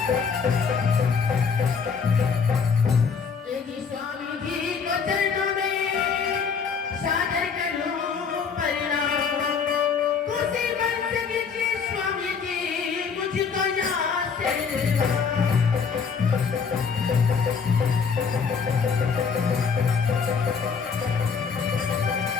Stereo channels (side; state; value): right; quieter; 5.9 dB